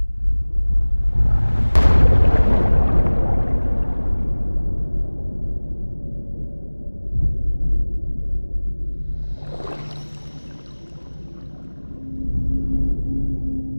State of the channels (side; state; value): both; inverted; correlation -1.00